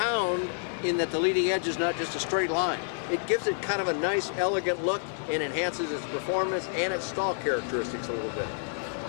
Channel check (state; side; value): silent; right; digital silence